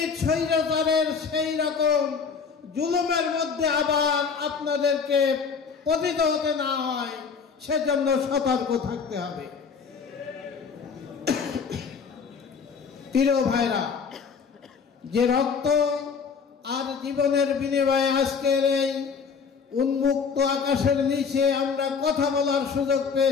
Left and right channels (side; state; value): right; quieter; 5.8 dB